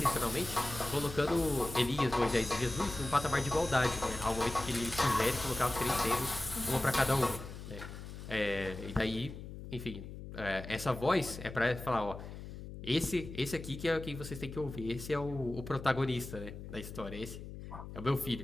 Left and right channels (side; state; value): left; noise; hum, 11 dB below the sound